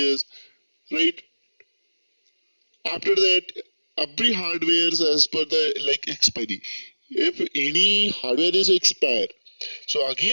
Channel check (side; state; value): both; inverted; correlation -1.00